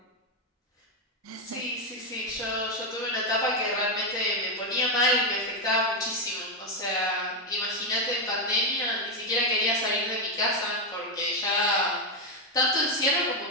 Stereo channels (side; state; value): both; normal; correlation 0.05